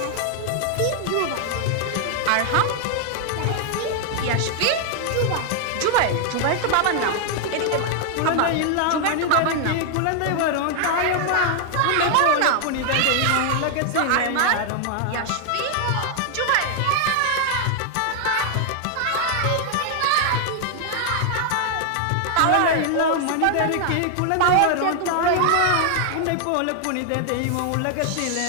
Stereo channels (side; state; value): both; different; correlation 0.00